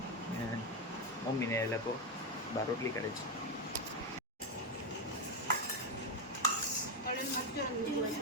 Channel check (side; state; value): both; normal; correlation 0.08